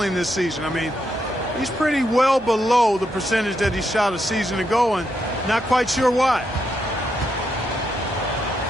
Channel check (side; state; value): both; normal; correlation 0.81